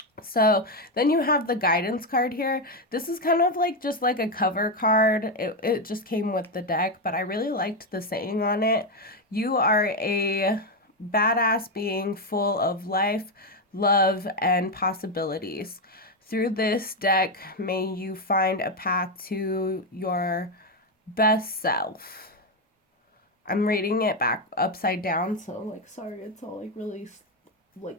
So then you have the guidance card here. This is kind of like just like a cover card. It just came with the deck, but I really liked the saying on it. You are a badass being full of life, love, and possibilities. Through this deck, may you find a path to your best self. I'm reading it back upside down, so like sorry, it's all like really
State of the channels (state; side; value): normal; both; correlation 0.07